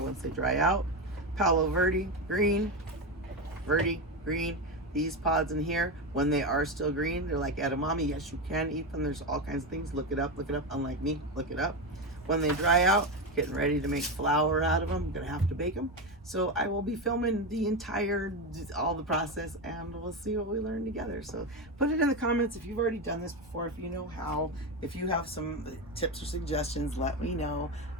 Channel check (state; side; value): normal; both; correlation 0.14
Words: they dry out. Palo Verde, green. These pods in here, when they are still green, they're like edamame. Yes, you can eat them. There's all kinds of things. Look it up. Unlike me, look it up. When they dry out, getting ready to make flour out of them. I'm gonna have to bake them. So I will be filming all the process, and we'll see what we learn together. So put it in the comments if you've already done this before, if you know how, if you have some tips or suggestions, let me know.